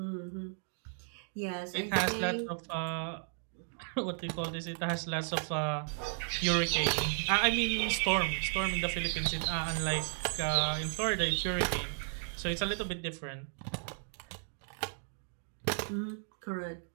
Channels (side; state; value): left; silent; digital silence